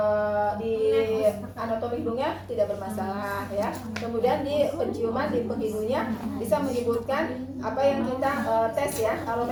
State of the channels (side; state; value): both; identical; correlation 1.00